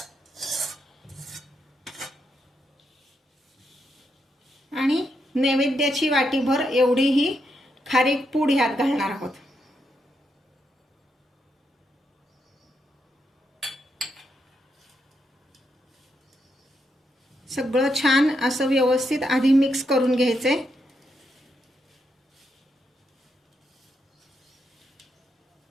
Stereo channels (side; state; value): both; normal; correlation 0.81